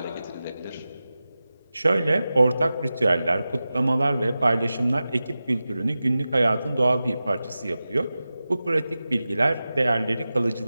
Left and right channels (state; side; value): inverted; both; correlation -0.94